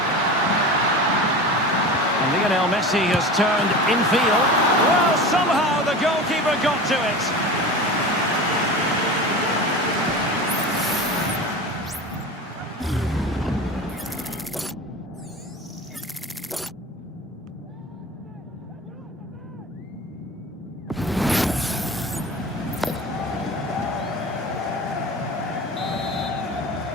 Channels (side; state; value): both; normal; correlation 0.32